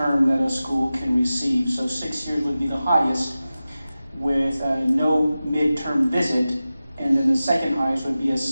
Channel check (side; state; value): both; inverted; correlation -0.95